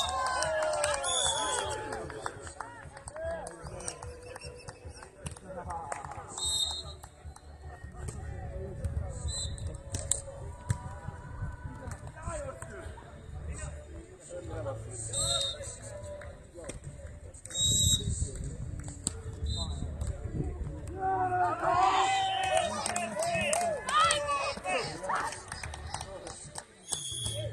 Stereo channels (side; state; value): both; identical; correlation 1.00